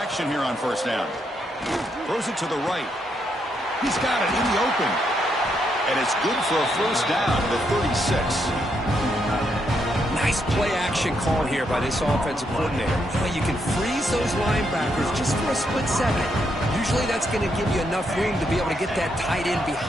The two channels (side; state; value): both; normal; correlation 0.78